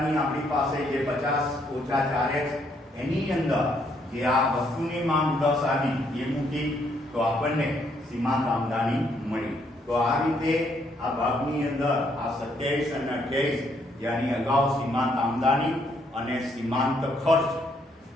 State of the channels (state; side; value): normal; both; correlation 0.71